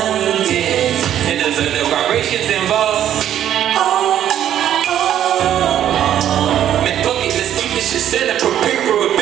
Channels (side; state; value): left; quieter; 10.8 dB